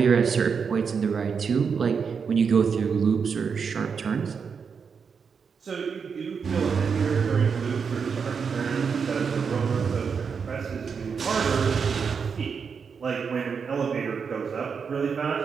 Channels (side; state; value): left; quieter; 6.0 dB